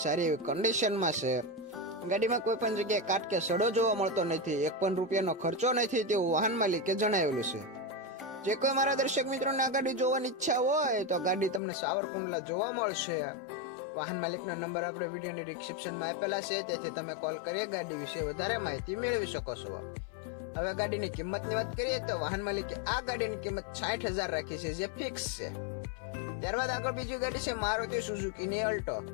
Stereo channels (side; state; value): right; drops out; at 11.6 s